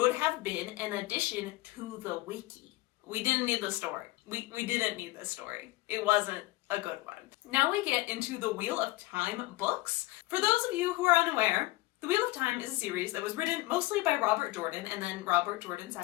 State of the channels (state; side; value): quieter; right; 19.9 dB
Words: have been an addition to the wiki. We didn't need the story. We didn't need this story. It wasn't a good one. Now we get into the Wheel of Time books. For those of you who are unaware, the Wheel of Time is a series that was written mostly by Robert Jordan, and then Robert Jordan